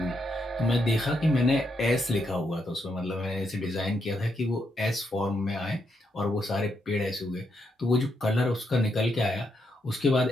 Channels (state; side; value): normal; both; correlation 0.79